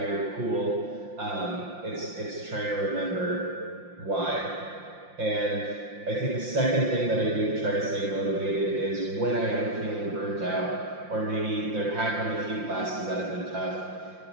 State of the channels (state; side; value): late; left; 5.7 ms